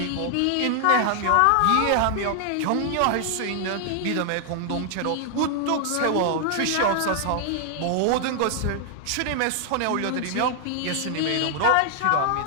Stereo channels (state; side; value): different; both; correlation 0.00